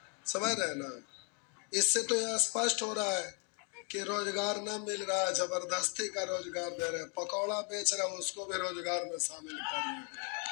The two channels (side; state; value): right; quieter; 38.5 dB